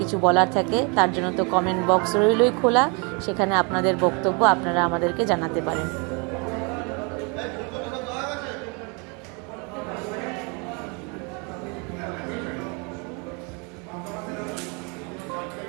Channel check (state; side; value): quieter; left; 32.6 dB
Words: কিছু বলার থাকে, তার জন্য তো কমেন্ট বক্স রইলই খোলা, সেখানে আপনাদের বক্তব্য আপনারা আমাদেরকে জানাতে পারেন।